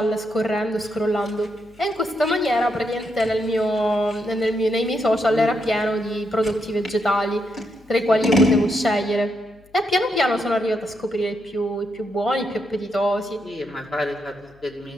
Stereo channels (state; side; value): noise; left; hum, 29 dB below the sound